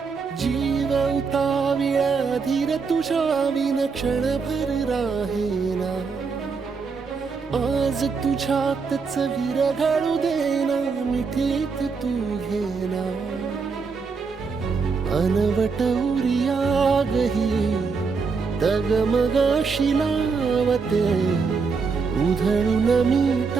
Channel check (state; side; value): quieter; left; 5.0 dB